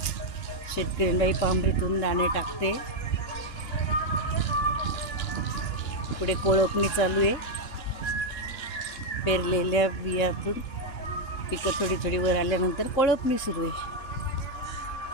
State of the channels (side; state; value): right; late; 2.9 ms